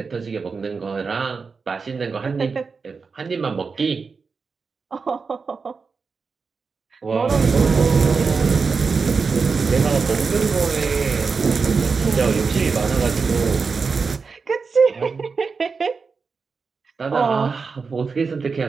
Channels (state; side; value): quieter; left; 4.9 dB